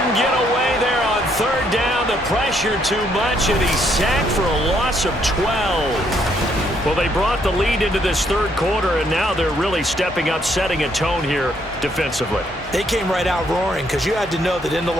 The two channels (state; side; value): normal; both; correlation 0.71